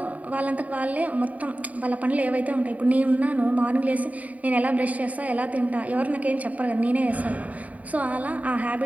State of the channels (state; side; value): late; left; 0.071 ms